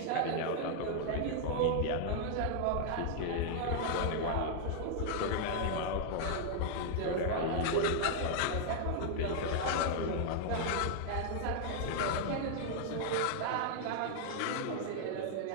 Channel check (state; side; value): different; both; correlation -0.01